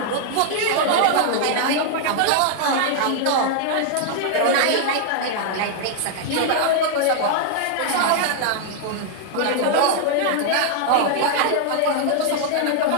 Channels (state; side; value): different; both; correlation -0.01